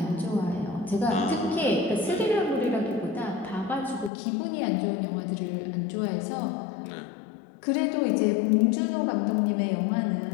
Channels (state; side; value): drops out; right; at 4.1 s